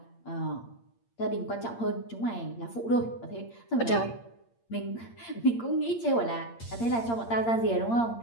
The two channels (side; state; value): right; late; 8.7 ms